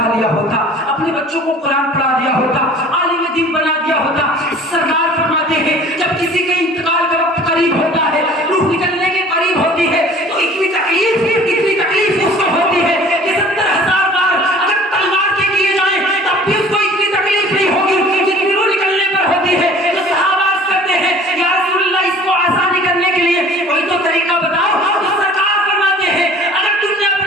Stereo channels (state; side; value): normal; both; correlation 0.48